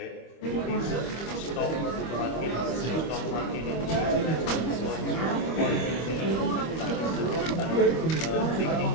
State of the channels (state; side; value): late; right; 25 ms